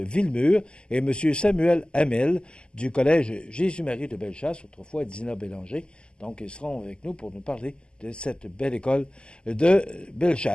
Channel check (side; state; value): right; late; 0.049 ms